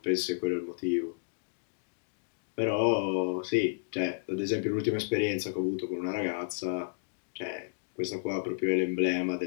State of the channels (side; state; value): right; silent; digital silence